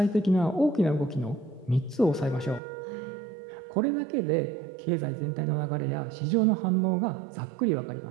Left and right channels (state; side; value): drops out; left; at 2.6 s